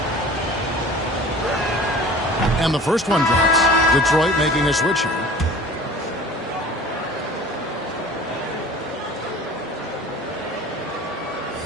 And the first one drops. Detroit making a switch here.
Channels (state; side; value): normal; both; correlation 0.42